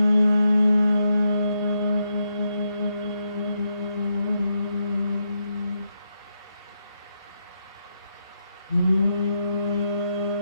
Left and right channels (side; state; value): both; inverted; correlation -0.82